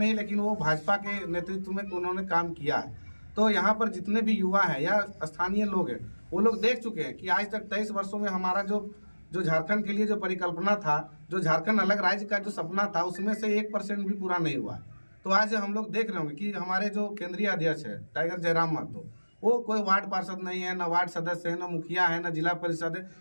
लेकिन वो भाजपा के नेतृत्व में उन्होंने काम किया है। तो यहाँ पर जितने भी युवा हैं या स्थानीय लोग हैं, वो लोग देख चुके हैं कि आज तक 23 वर्षों में हमारा जो झारखंड के लिए जो परिकल्पना था, जो झारखंड अलग राज्य का जो सपना था, उसमें से 1% भी पूरा नहीं हुआ है। तो आज हम लोग देख रहे होंगे कि हमारे जो केंद्रीय अध्यक्ष है टाइगर जयराम महतो, वो कोई वार्ड पार्षद नहीं है, ना वार्ड सदस्य है, ना मुखिया है, ना जिला परिषद है,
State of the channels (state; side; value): inverted; both; correlation -1.00